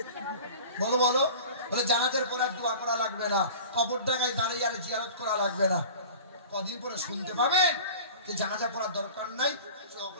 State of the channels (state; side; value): inverted; both; correlation -0.39